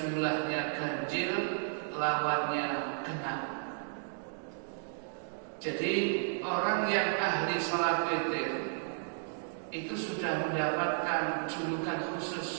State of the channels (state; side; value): silent; left; digital silence